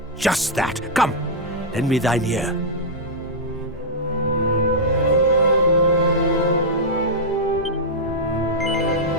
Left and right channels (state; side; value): normal; both; correlation -0.08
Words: just that. Come, lend me thine ear.